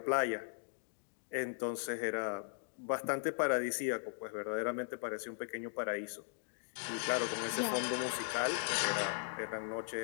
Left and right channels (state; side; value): silent; right; digital silence